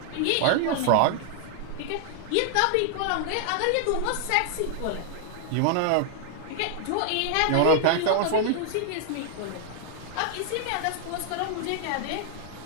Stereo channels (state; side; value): different; both; correlation 0.00